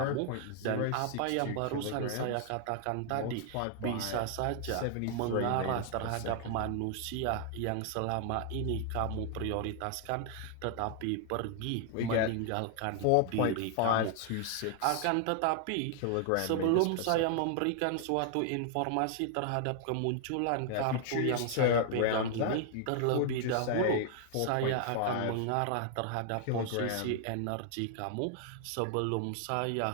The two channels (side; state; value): both; different; correlation 0.00